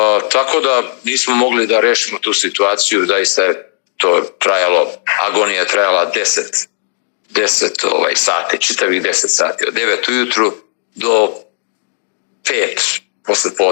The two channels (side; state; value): right; silent; digital silence